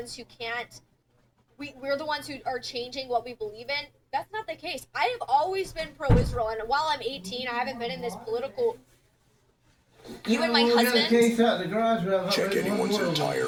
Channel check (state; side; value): identical; both; correlation 1.00